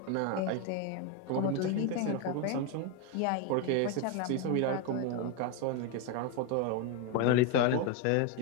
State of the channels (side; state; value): both; different; correlation 0.02